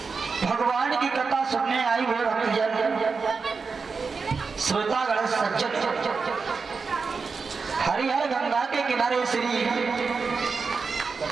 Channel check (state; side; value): quieter; left; 4.9 dB